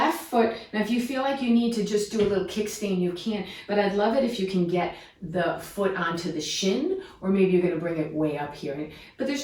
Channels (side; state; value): both; identical; correlation 1.00